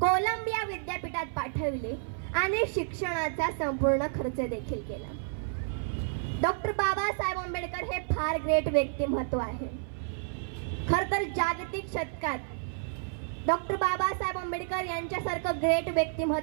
विद्यापीठात पाठविले आणि शिक्षणाचा संपूर्ण खर्च देखील केला. डॉक्टर बाबासाहेब आंबेडकर हे फार ग्रेट व्यक्तिमत्व आहे. खर तर जागतिक शतकात डॉक्टर बाबासाहेब आंबेडकर यांच्यासारखं ग्रेट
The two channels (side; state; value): left; silent; 55 dB below the other